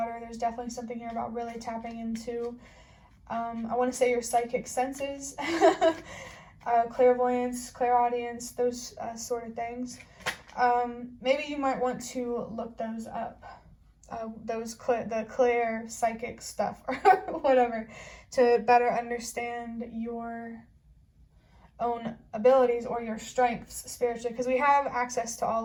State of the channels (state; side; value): identical; both; correlation 1.00